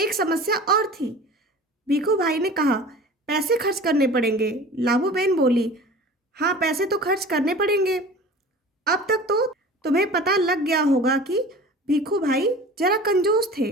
समस्या और थी। भीखू भाई ने कहा, पैसे खर्च करने पड़ेंगे। लाभू बेन बोली, हाँ, पैसे तो खर्च करने पड़ेंगे। अब तक तो तुम्हें पता लग गया होगा कि भीखू भाई जरा कंजूस थे।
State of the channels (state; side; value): normal; both; correlation 0.40